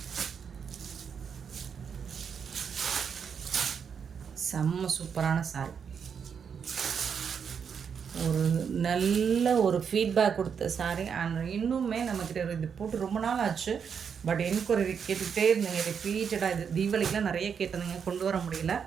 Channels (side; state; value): left; quieter; 6.9 dB